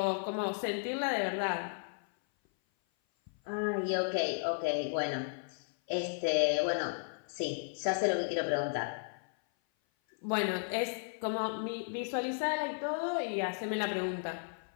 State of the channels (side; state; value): right; silent; 55 dB below the other